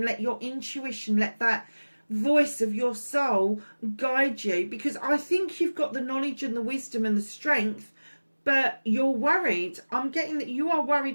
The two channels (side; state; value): both; inverted; correlation -1.00